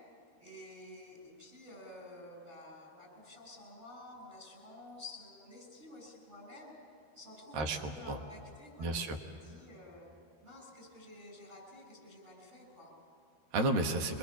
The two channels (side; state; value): left; late; 13 ms